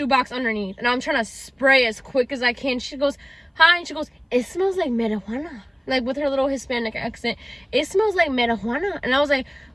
underneath. And I'm trying to spray as quick as I can. She goes, hi. And she goes, it smells like marijuana. Like, with her little Hispanic accent. It smells like marijuana. And I was like,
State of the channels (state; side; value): identical; both; correlation 1.00